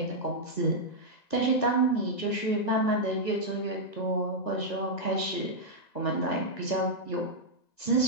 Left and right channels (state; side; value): late; right; 1.9 ms